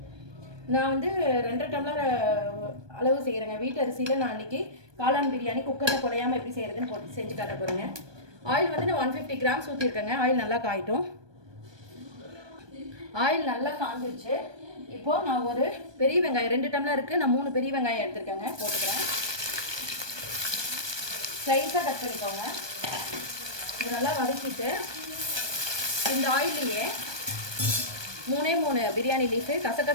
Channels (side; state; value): left; late; 1.2 ms